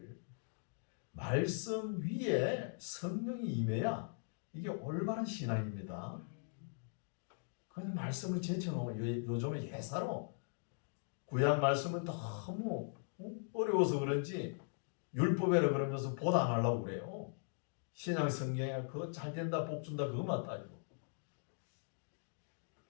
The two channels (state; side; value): silent; right; digital silence